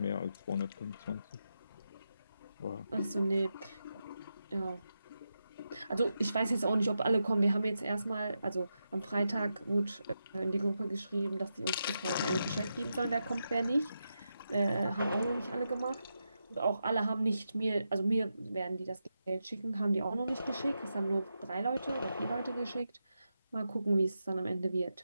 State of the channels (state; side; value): inverted; both; correlation -0.87